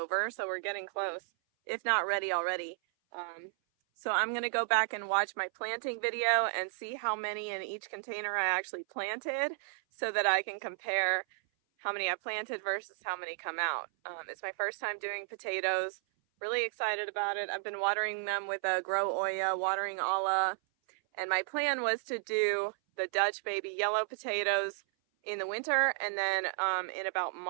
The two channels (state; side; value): silent; left; 56 dB below the other